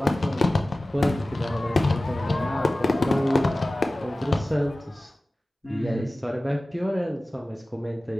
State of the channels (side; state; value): both; normal; correlation 0.97